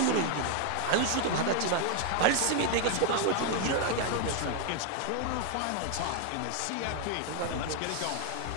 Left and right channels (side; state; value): both; different; correlation 0.01